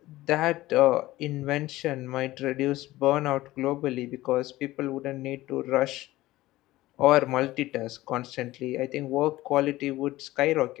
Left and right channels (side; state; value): right; quieter; 17.2 dB